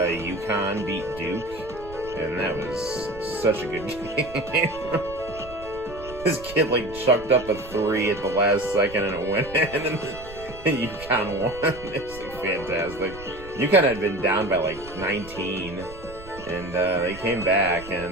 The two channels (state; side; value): noise; right; rumble, 17 dB below the sound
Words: beat Duke, and that was such a good game. This kid like chucked up a 3 at the last second and it went in, and UConn won. It's like fantastic. UConn had been down by like 19, and they came back,